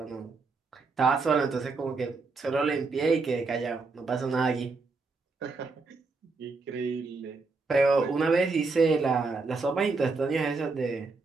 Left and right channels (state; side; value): quieter; left; 4.0 dB